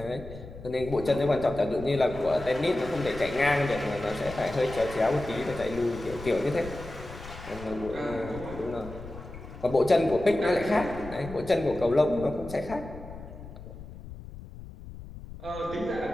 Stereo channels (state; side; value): noise; left; rumble, 14 dB below the sound